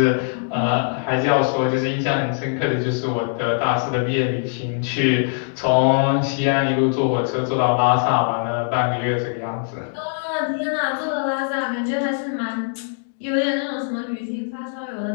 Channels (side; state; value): right; silent; digital silence